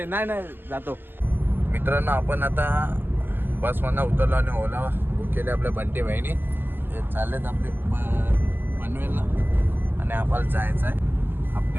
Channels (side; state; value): left; late; 0.095 ms